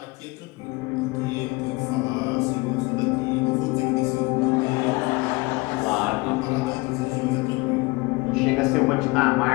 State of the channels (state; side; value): quieter; right; 24.7 dB